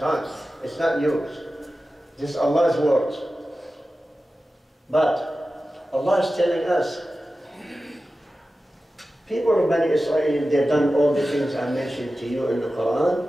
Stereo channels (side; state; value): both; normal; correlation 0.94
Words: It's not yours. This is Allah's words. But Allah is telling us, people of Bani Israel, they've done all the things I mentioned to you in the Quran.